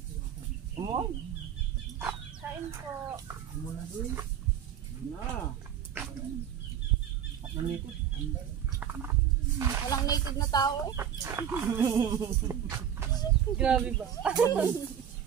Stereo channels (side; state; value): left; quieter; 9.2 dB